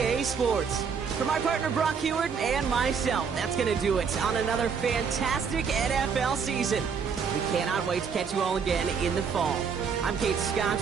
Sports, for my partner Brock Heward and myself, that's going to do it on another fantastic NFL season. We cannot wait to catch you all again in the fall. I'm Kate Scott.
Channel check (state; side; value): quieter; left; 6.2 dB